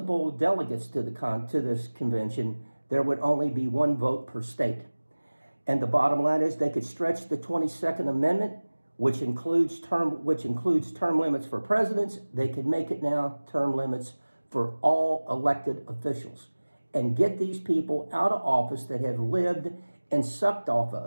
delegates to this convention, there would only be one vote per state. And the bottom line is, they could stretch the 22nd Amendment, which includes term limits for presidents. They could make it now term limits for all elected officials, and get these people out of office that have lived and sucked off of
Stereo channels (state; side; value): inverted; both; correlation -1.00